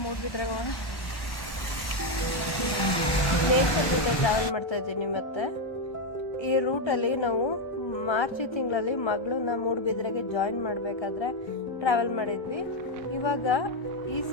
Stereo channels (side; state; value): right; late; 1.3 ms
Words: ಮೂಡ್ಬಿದ್ರೆ ಹೋಗೋಣ. ನೇಚರ್ ಜೊತೆ ಟ್ರಾವೆಲ್ ಮಾಡ್ತಾ ಇದ್ದೀನಿ. ಮತ್ತು ಈ ರೂಟಲ್ಲಿ ನಾವು ಮಾರ್ಚ್ ತಿಂಗಳಲ್ಲಿ ಮಗಳನ್ನ ಮೂಡುಬಿದ್ರೆಗೆ ಜಾಯಿನ್ ಮಾಡಬೇಕಾದ್ರೆ ಟ್ರಾವೆಲ್ ಮಾಡಿದ್ವಿ. ಇವಾಗ ಈ